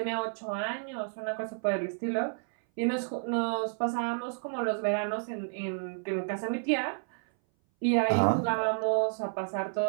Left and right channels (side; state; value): left; silent; 57 dB below the other